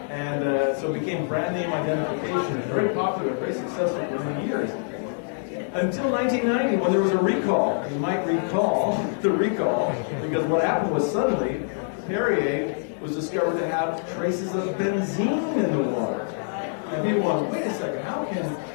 And so it became brand name identification, very popular, very successful for many years. Until 1990, when there was a recall. You might recall the recall, because what happened was suddenly Perrier was discovered to have traces of benzene in the water. And people went, wait a second, how can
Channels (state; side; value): silent; right; digital silence